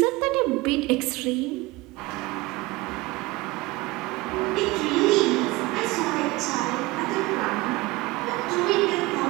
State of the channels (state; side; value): quieter; left; 21.1 dB